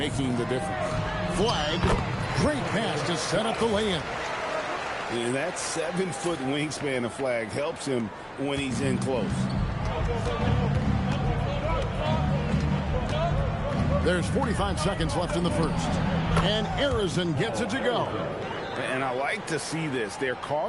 the difference. Flag. Great pass to set up the lay-in. And that 7-foot wingspan of Flag helps him when he's in close. There's 45 seconds left in the first. And Arizin gets it to go. And I like to see this. They're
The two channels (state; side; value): identical; both; correlation 1.00